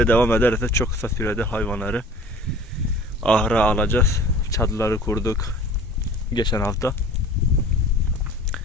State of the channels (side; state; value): both; normal; correlation 0.45